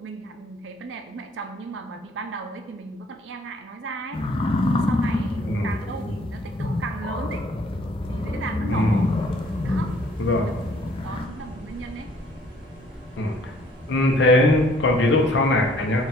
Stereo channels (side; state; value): both; normal; correlation 0.59